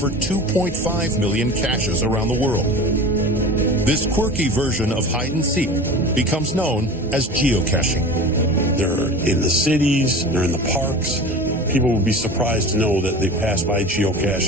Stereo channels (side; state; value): both; normal; correlation 0.35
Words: 2.5 million caches around the world. This quirky version of hide and seek becomes known as geocaching. They're in the cities, they're in the parks. People would be surprised to know that they pass by